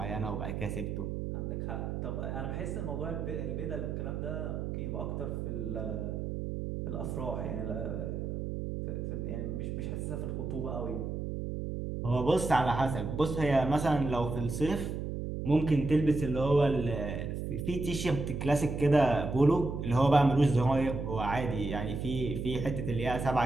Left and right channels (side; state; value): right; noise; hum, 4 dB below the sound